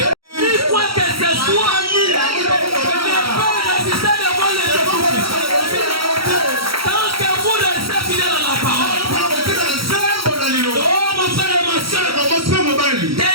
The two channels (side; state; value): left; late; 0.75 ms